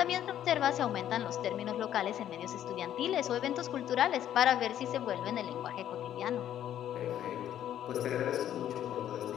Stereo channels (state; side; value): quieter; right; 11.0 dB